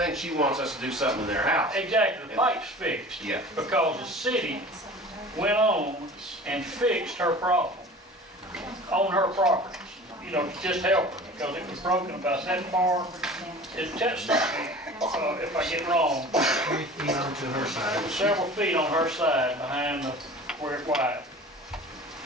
she wants us to do something in their house. Exactly, the pipe's fixed. Yeah. Because the city went on and fixed her problem on her property. You know, to just help her, because it was broken about that far. If I get wrong, 3 feet onto her side. several feet on her side behind where it widened.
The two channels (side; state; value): both; normal; correlation 0.41